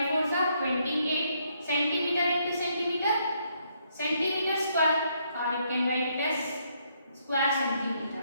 4s are 28 centimeter into centimeter. Centimeter square, or you can write it as square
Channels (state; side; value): inverted; both; correlation -0.73